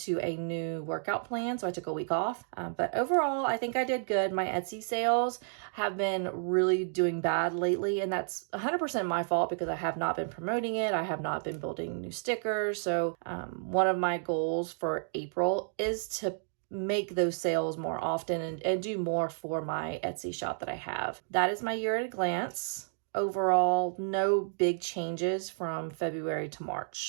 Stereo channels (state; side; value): silent; left; digital silence